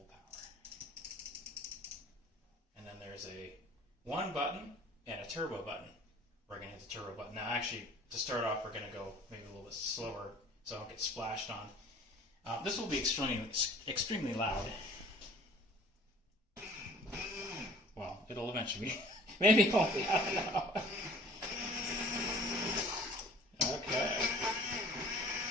power. And then there's a 1 button and a turbo button. We're going to hit the turbo button. Now actually, to start off, we're going to go maybe a little bit slower so I don't get splashed on. This will be extremely loud. Well, it'll eventually be. Maybe it won't be, I don't know. Okay.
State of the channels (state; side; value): normal; both; correlation 0.50